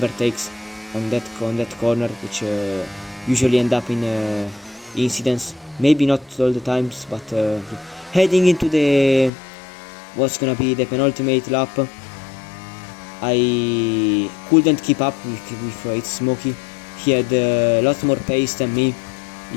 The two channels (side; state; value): right; drops out; at 9.3 s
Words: on that corner, which usually end up in incidents. Maybe not all the times, but heading into the what's gonna be the penultimate lap, I couldn't keep up with its Smokey. He had a lot more pace than me,